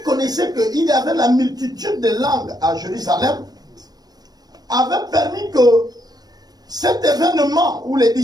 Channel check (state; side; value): late; left; 0.19 ms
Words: connaissait qu'il y avait la multitude de langues à Jérusalem avait permis que cet événement où les